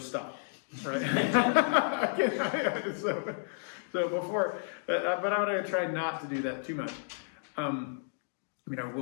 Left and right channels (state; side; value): silent; right; digital silence